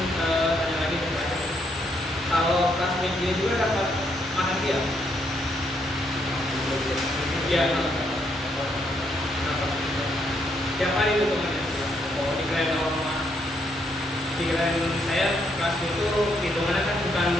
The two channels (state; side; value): normal; both; correlation 0.75